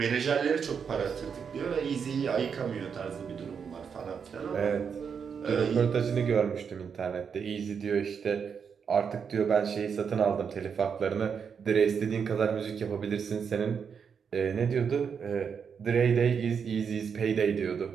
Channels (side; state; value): left; quieter; 6.6 dB